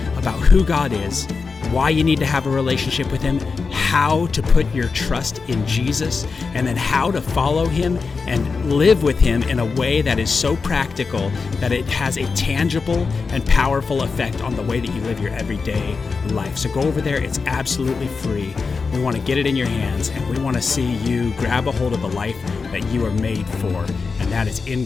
about who God is, why you need to have a relationship with Him, how to put your trust in Jesus, and then how to follow Him and live with Him in a way that is so practical that it has a tangible and powerful effect on the way that you live your everyday life. So go over there. It's absolutely free. We want to get it in your hands, and we want to see you grab a hold of the life that you are made for, and that is in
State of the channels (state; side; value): quieter; right; 4.7 dB